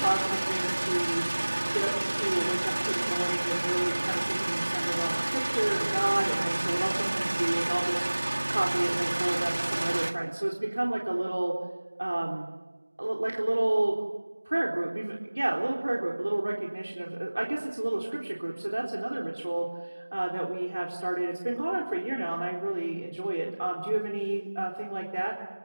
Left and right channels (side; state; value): both; inverted; correlation -1.00